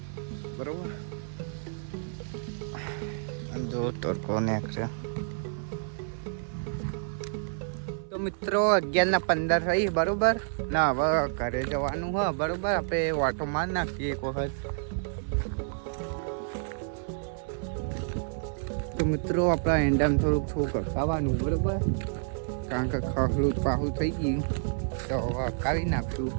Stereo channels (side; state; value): left; silent; 58 dB below the other